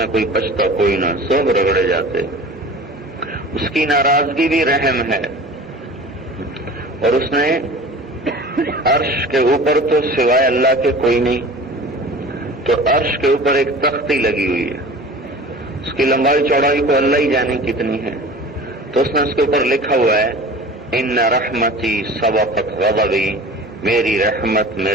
کوئی بچتا کوئی نہ، سب رگڑے جاتے۔ اس کی ناراضگی بھی رحم ہے، اور اس نے عرش کے اوپر تو سوائے اللہ کے کوئی نہیں، تو عرش کے اوپر ایک تختی لگی ہوئی ہے، اس کی لمبائی چوڑائی کو اللہ ہی جانے کتنی ہے، تو اس نے اس کے اوپر لکھا ہوا ہے ان رحمتی سبقت غضبی، میری رحمت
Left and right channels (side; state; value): both; normal; correlation 0.40